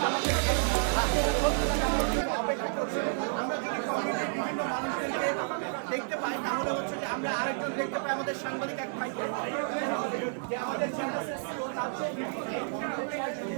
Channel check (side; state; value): left; silent; digital silence